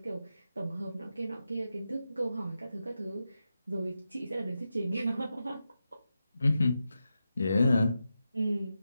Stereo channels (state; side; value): inverted; both; correlation -0.89